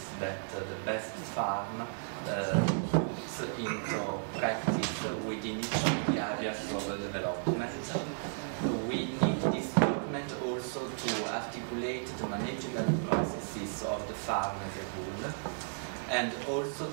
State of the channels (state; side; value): silent; left; 55 dB below the other